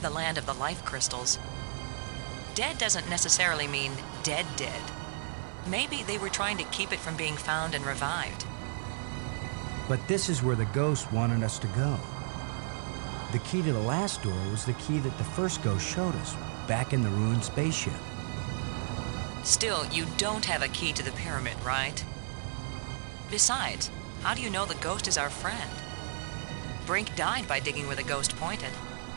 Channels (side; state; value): left; silent; digital silence